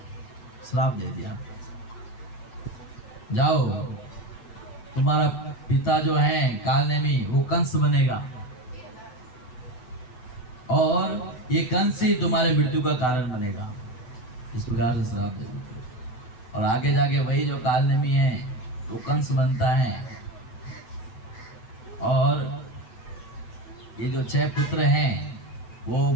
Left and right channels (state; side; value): late; right; 8.0 ms